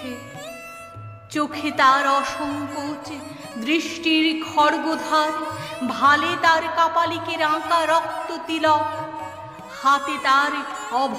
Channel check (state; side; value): identical; both; correlation 1.00